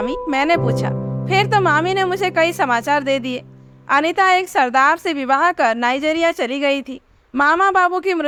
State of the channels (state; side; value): identical; both; correlation 1.00